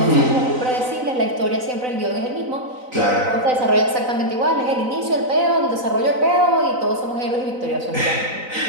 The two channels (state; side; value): late; left; 4.0 ms